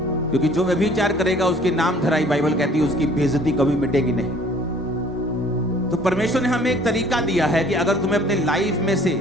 क्योंकि जो व्यभिचार करेगा उसके नाम धराई, बाइबल कहती है उसकी बेइज्जती कभी मिटेगी नहीं। तो परमेश्वर ने हमें एक तरीका दिया है कि अगर तुम्हें अपने लाइफ में से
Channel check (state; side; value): normal; both; correlation 0.54